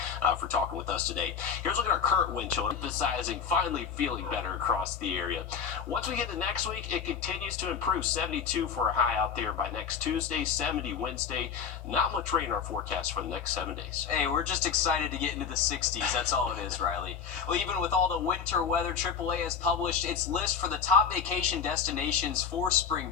for talking with us today. Here's a look at our current wind chill, emphasizing finally feeling better across the area. Once we get to next week, it continues to improve. 72 for a high out there by next Tuesday, 70 Wednesday. Not much rain in our forecast for the next 7 days. Hey, we're just excited to get into the 60s. That's all it is, Riley. Well, even with all the winter weather, AAA has published its list for the top vacation destinations for spring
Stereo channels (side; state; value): right; quieter; 6.8 dB